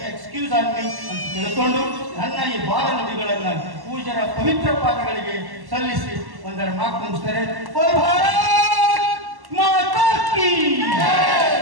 excuse on me ಅಂತ ತಿಳ್ಕೊಂಡು ನನ್ನ ಈ ಬಾಲ ನದಿಗಳನ್ನು ಪೂಜರ ಪವಿತ್ರ ಪಾದಗಳಿಗೆ ಸಲ್ಲಿಸಿ ಒಂದರ ಮಾತು ಮುಗಿಸ್ತಾರೆ.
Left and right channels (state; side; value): late; left; 1.1 ms